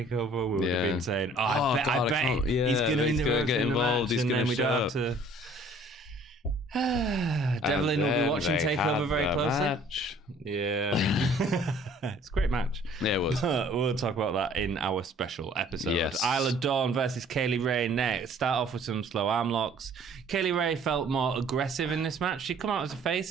we would have been saying, I bet he's going to get involved. He's going to show up. To... Devlin will be watching TakeOver very closely. Yeah. It's a great match. Yeah, it was. We'll talk about that in our special episode. Yes. Isla Dawn versus Kaylee Ray next. Start off with some slow arm locks. Kaylee Ray felt more aggressive in this match. She'd come out as a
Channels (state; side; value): normal; both; correlation 0.55